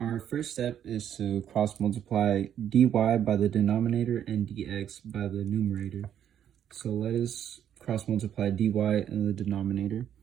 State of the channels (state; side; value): quieter; left; 9.7 dB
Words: first step is to cross multiply dy by the denominator and dx by the numerator. So let us cross multiply dy in the denominator.